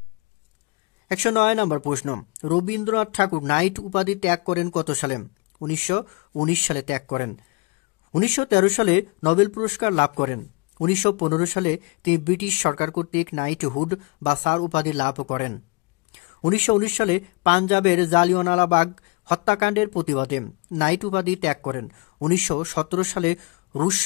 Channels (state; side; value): quieter; right; 28.4 dB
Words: 109 নম্বর প্রশ্ন, রবীন্দ্রনাথ ঠাকুর নাইট উপাধি ত্যাগ করেন কত সালে? 1919 সালে ত্যাগ করেন। 1913 সালে নোবেল পুরস্কার লাভ করেন। 1915 সালে তিনি ব্রিটিশ সরকার কর্তৃক নাইটহুড বা স্যার উপাধি লাভ করেন। 1919 সালে পাঞ্জাবের জালিয়ানওয়ালাবাগ হত্যাকাণ্ডের প্রতিবাদে নাইট উপাধি ত্যাগ করেন। 1917 সালে রুশ